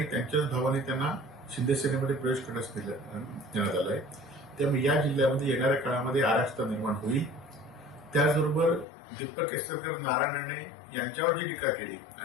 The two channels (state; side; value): drops out; right; at 8.8 s